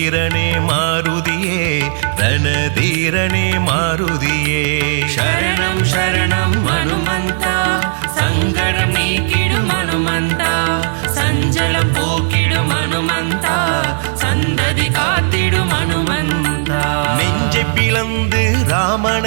மாருதியே ரணதீரனே மாருதியே சரணம் சரணம் அனுமந்தா சங்கடம் நீக்கிடும் அனுமந்தா சஞ்சலம் போக்கிடும் அனுமந்தா சந்ததி காத்திடும் அனுமந்தா நெஞ்சை பிளந்து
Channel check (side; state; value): left; silent; digital silence